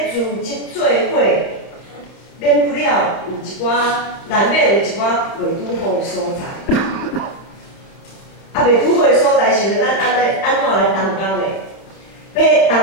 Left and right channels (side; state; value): right; late; 31 ms